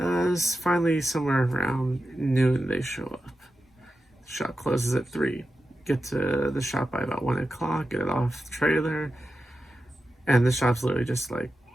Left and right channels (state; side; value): normal; both; correlation 0.91